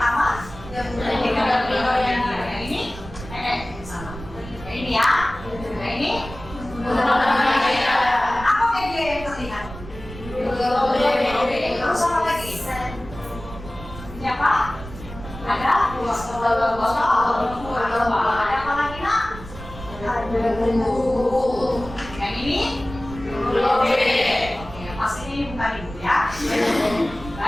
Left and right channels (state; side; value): noise; right; rumble, 13 dB below the sound